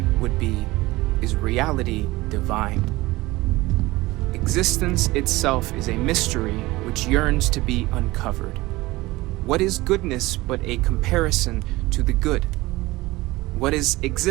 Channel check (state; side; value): quieter; left; 19.9 dB